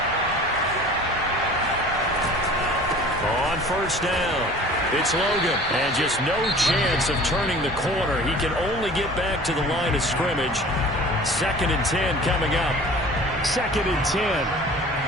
On first down, it's Logan, and just no chance of turning the corner. He can only get back to the line of scrimmage. 2nd and 10 coming up. 2nd and 10.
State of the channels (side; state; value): both; normal; correlation 0.44